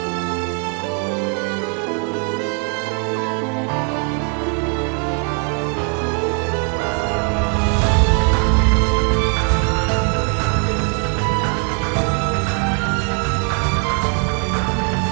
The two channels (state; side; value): quieter; left; 39.2 dB